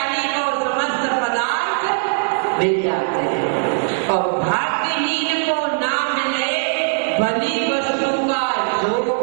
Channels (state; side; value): silent; left; digital silence